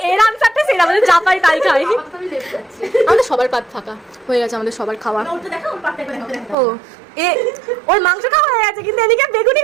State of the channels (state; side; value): drops out; left; at 6.6 s